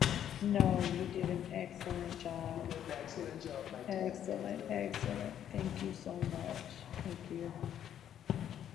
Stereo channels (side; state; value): right; quieter; 10.1 dB